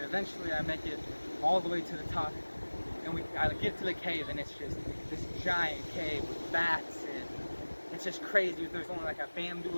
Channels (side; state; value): both; inverted; correlation -1.00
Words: eventually I make it all the way to the top. And I get to the cave, and it's just this giant cave with bats, and it's just crazy. There's only like a